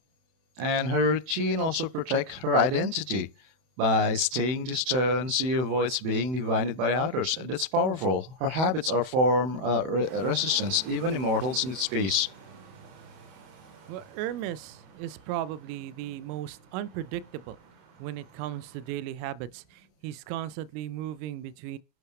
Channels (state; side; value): late; left; 31 ms